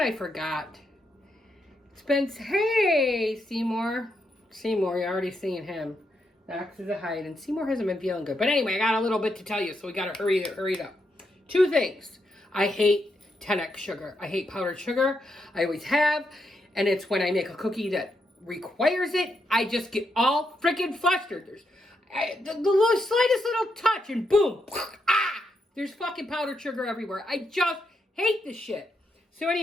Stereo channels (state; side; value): normal; both; correlation 0.81